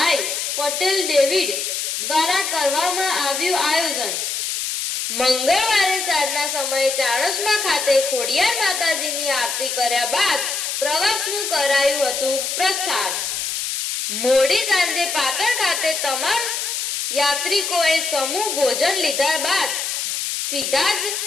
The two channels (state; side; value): noise; left; hiss, 2 dB below the sound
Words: પટેલ ડેવિડ દ્વારા કરવામાં આવ્યું આયોજન। મંગળવારે સાંજના સમયે ચાણસમા ખાતે ખોડિયાર માતાજીની આરતી કર્યા બાદ પ્રવાસનું કરાયું હતું પ્રસ્થાન। મોડી સાંજે પાટણ ખાતે તમામ યાત્રિકોએ સમૂહ ભોજન લીધા બાદ સીધા જ